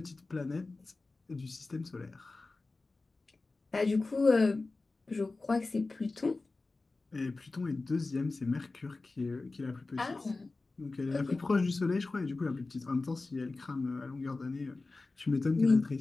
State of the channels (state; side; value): quieter; right; 3.5 dB